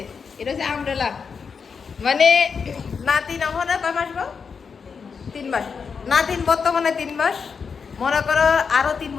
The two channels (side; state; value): right; quieter; 5.8 dB